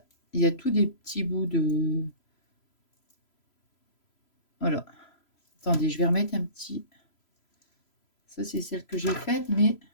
Il y a tous des petits bouts de... voilà. Attendez, je vais remettre un petit... ça, c'est celle que j'ai faite, mais...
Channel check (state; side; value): late; right; 3.0 ms